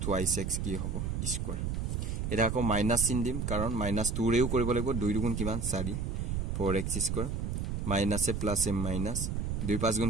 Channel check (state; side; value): noise; right; rumble, 1 dB below the sound